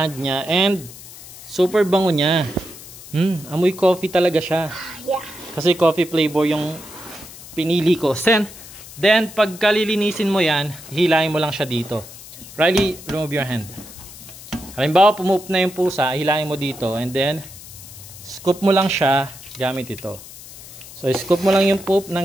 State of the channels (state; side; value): noise; left; hiss, 16 dB below the sound